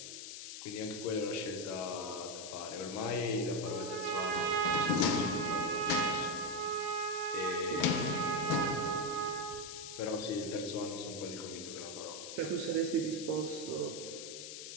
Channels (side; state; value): left; noise; hiss, 9 dB below the sound